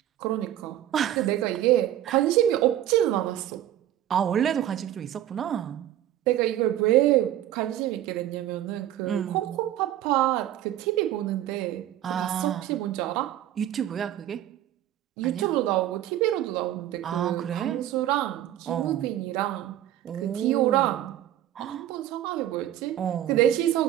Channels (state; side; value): quieter; left; 12.4 dB